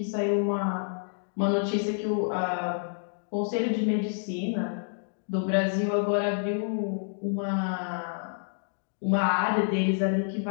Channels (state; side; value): silent; right; digital silence